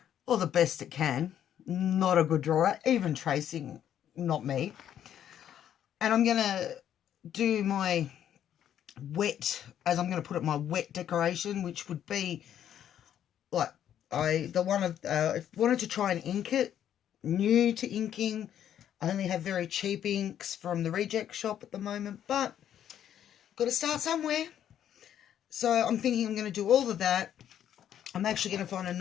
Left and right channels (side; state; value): right; quieter; 10.2 dB